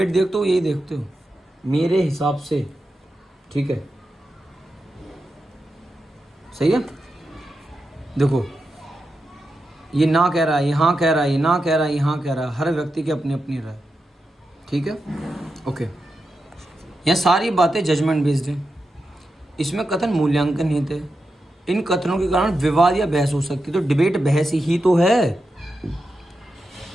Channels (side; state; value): both; normal; correlation 0.88